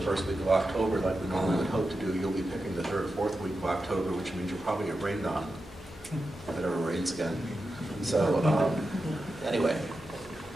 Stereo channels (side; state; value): both; normal; correlation 0.90